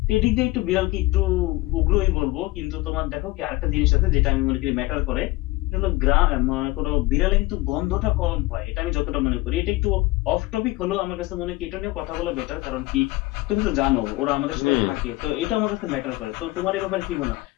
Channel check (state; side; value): quieter; right; 20.0 dB